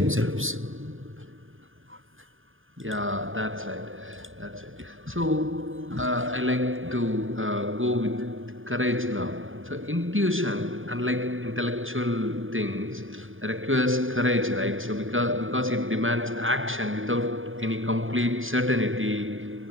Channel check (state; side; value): late; left; 0.59 ms